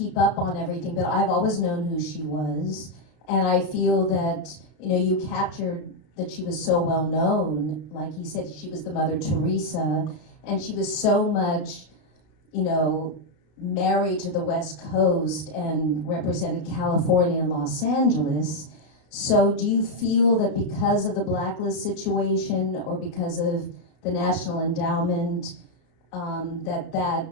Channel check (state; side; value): late; right; 32 ms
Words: up on everything, but I've always known who she was. And I feel that, you know, you captured that she was so well known. Like he said, she was the Mother Teresa, and she was so much, you know, married to the West Coast and represented California and Los Angeles. So do you feel that because of the blacklist situation or because of the National Endowment, that